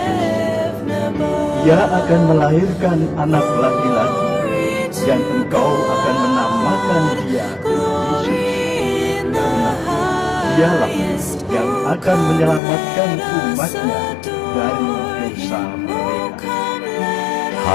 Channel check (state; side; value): drops out; right; at 12.6 s